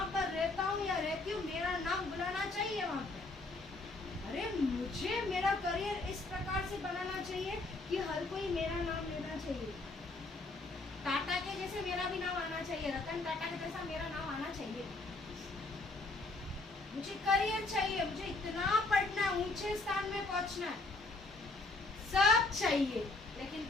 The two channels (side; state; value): right; quieter; 3.3 dB